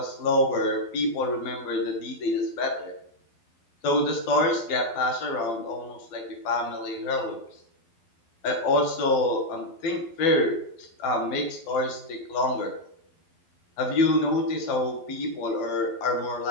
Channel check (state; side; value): late; right; 12 ms